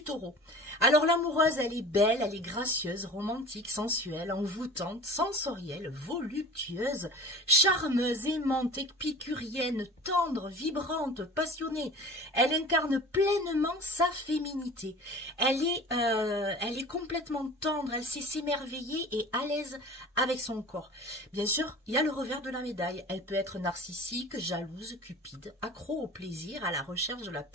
taureau. Alors l'amoureuse, elle est belle, elle est gracieuse, romantique, sensuelle, envoûtante, sensorielle, voluptueuse, charmeuse, aimante, épicurienne, tendre, vibrante, passionnée. Elle incarne pleinement sa féminité. Elle est complètement tendre, elle sait s'émerveiller et à l'aise avec son corps. Bien sûr, il y a le revers de la médaille. Elle peut être narcissique, jalouse, cupide, accro au plaisir, à la recherche de la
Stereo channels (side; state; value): both; normal; correlation 0.40